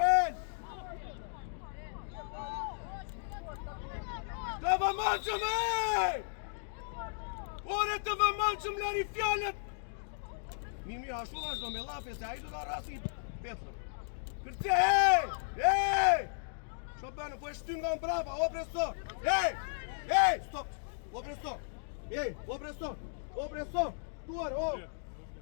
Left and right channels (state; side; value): silent; right; digital silence